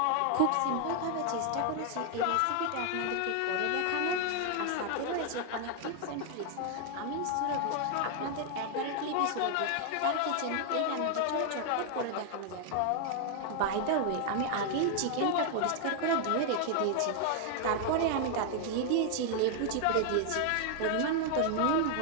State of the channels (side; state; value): both; different; correlation 0.00